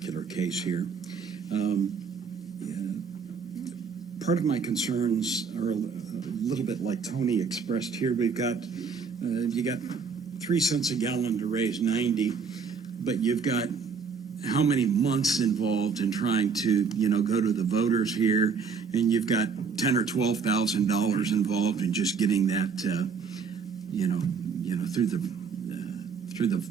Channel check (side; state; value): left; quieter; 5.5 dB